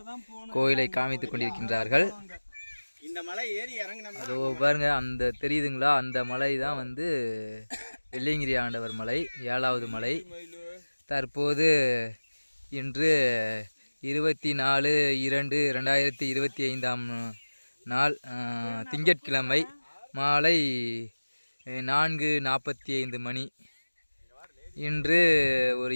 கோயிலை காமித்துக் கொண்டிருக்கின்றார்கள். இந்த மலை ஏறி இறங்கினோம்னா அதோ பாருங்க, அந்த தெரியுதுங்களா? அந்த மலை தான் வந்து வெள்ளியங்கிரி ஆண்டவர் மலை, 7வது மலை. தற்போது இன்று 24/2/2025 நாள் திங்கட்கிழமை மாலை 4:45 மணி. இன்று ஒரு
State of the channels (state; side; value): inverted; both; correlation -1.00